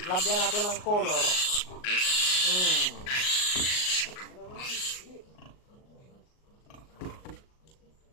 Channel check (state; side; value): late; right; 38 ms